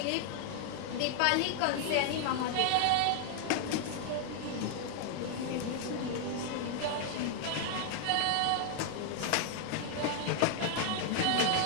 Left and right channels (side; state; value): both; different; correlation 0.00